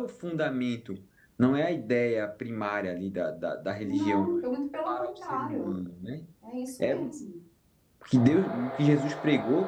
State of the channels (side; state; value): both; identical; correlation 1.00